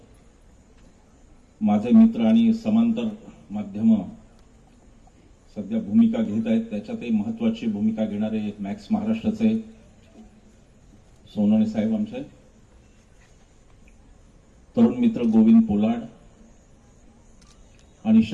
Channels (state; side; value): identical; both; correlation 1.00